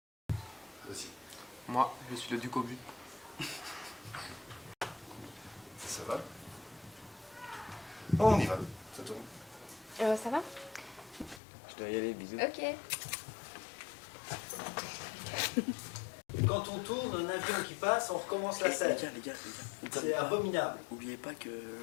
Vas-y. Moi, je suis le duc au but. Ça va? On y va. Ça tourne. Ça va? Je dois y aller, bisous. Ok. Quand on tourne un avion qui passe, on recommence la scène. Les gars, C'est abominable. Oubliez pas qu'il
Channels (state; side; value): drops out; right; at 11.4 s